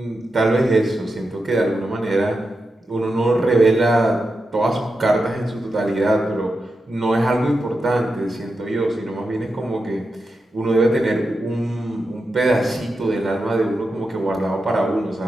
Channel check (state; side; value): normal; both; correlation 0.89